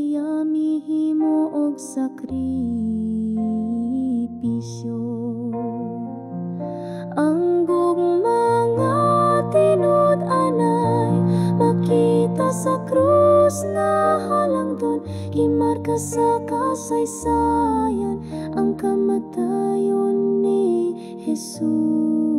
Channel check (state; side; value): identical; both; correlation 1.00